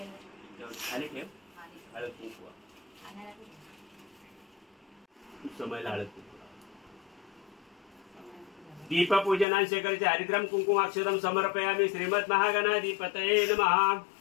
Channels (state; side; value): drops out; right; at 9.5 s